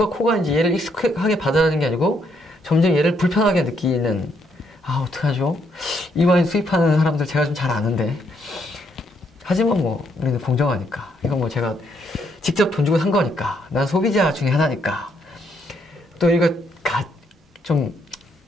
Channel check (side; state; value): both; normal; correlation 0.73